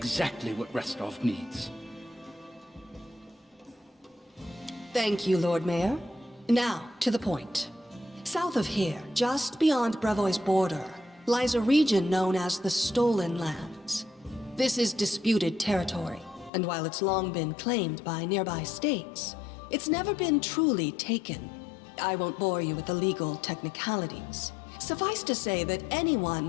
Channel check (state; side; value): drops out; right; at 16.5 s